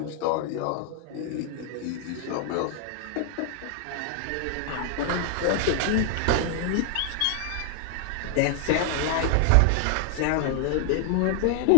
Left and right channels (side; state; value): both; different; correlation 0.00